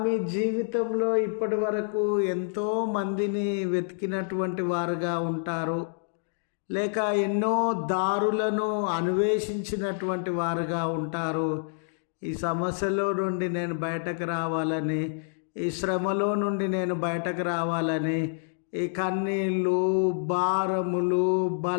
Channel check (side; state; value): right; silent; digital silence